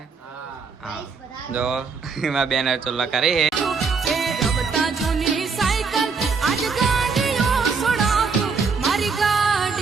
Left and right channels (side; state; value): left; quieter; 5.0 dB